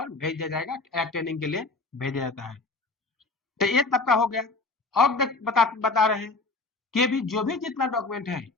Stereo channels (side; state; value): right; quieter; 3.6 dB